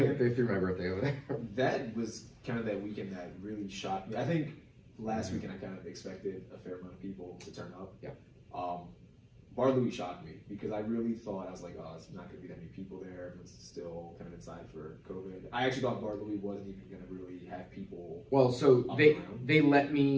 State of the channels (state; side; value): identical; both; correlation 1.00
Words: They threw my birthday over there. That was kind of that weekend that really shocked me. I think last weekend I kind of expected a fair amount of people to turn up. Yeah. Bar Louie shocked me because I really thought, I was like, oh, it's not going to be that many people there. Everyone's still kind of inside for COVID. I actually thought Bar Louie wasn't even going to really have people. Well, so up they around. they let